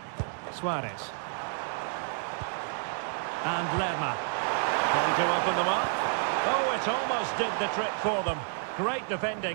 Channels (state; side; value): silent; left; 58 dB below the other